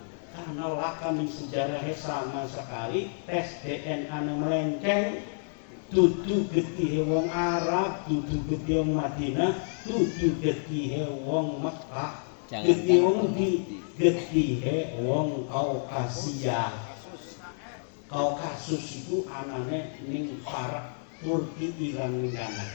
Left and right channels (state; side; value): silent; right; 56 dB below the other